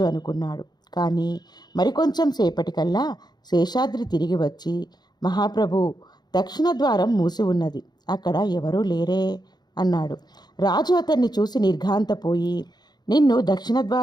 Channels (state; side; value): late; right; 0.20 ms